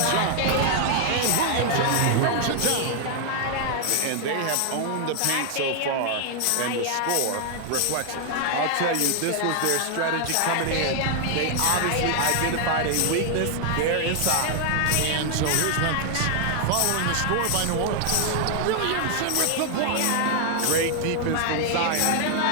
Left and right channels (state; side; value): different; both; correlation 0.00